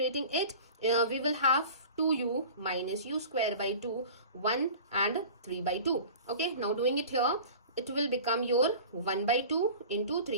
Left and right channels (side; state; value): both; inverted; correlation -0.39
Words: it, we will have 2u minus u square by 2, 1 and 3 by 2. Okay, now doing it here, it will become your 1 by 2 into